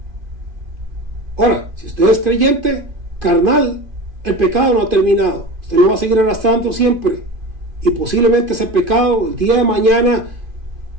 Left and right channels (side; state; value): left; late; 2.5 ms